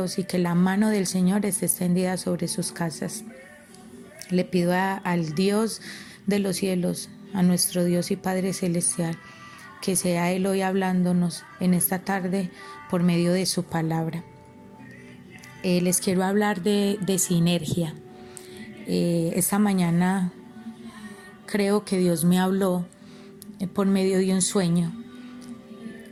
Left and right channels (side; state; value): both; identical; correlation 1.00